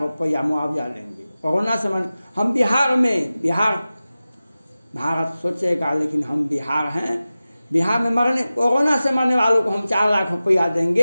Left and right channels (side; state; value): both; inverted; correlation -0.96